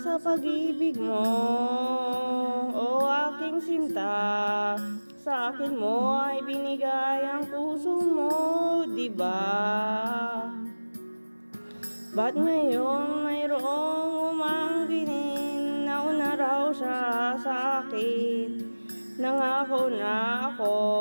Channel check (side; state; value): both; inverted; correlation -1.00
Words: pag-ibig mo, o aking sinta. Sa akin mo ay binigay ang puso mo, diba? Ba't ngayon mayroong umangkinin? Nauna raw siya sa akin. Nangako na ako,